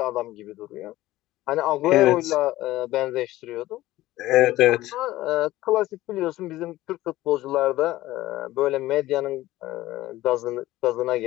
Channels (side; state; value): right; quieter; 16.5 dB